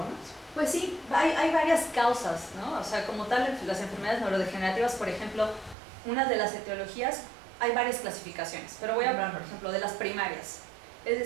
Pues sí, hay varias causas, ¿no? O sea, como tal, las enfermedades neurodegenerativas, por ejemplo, una de las etiologías, hay varias clasificaciones, pero voy a hablar, por ejemplo, de las primarias. Es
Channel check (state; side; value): drops out; left; at 5.8 s